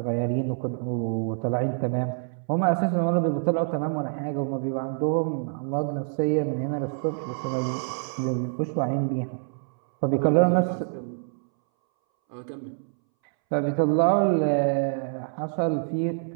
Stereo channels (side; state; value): left; silent; 61 dB below the other